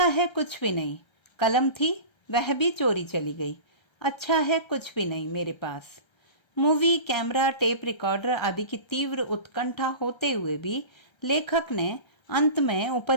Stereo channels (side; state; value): right; late; 1.3 ms